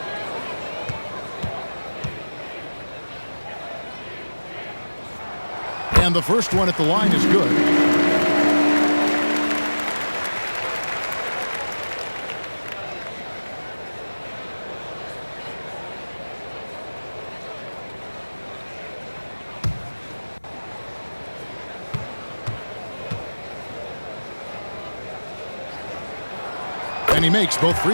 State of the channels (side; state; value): both; inverted; correlation -1.00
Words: And the first one at the line is good. And he makes both